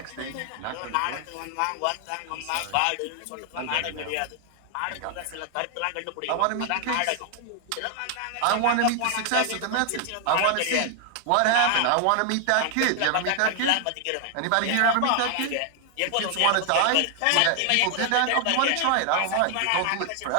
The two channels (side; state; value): both; different; correlation 0.00